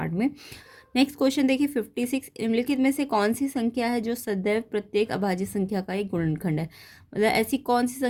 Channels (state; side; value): identical; both; correlation 1.00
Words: में। नेक्स्ट क्वेश्चन देखिए 56, निम्नलिखित में से कौन सी संख्या है जो सदैव प्रत्येक अभाज्य संख्या का एक गुणनखंड है। मतलब ऐसी कौन सी